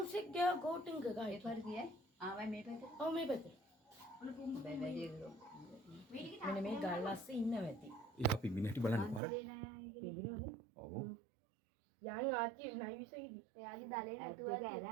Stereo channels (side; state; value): left; drops out; at 9.2 s